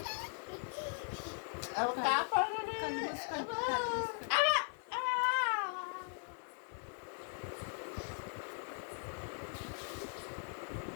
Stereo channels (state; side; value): silent; right; 52 dB below the other